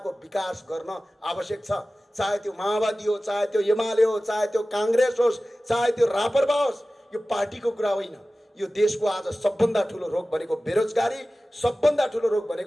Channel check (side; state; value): both; normal; correlation 0.96